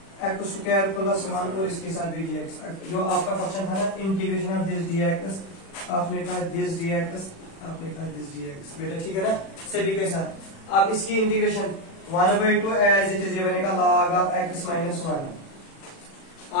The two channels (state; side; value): late; right; 36 ms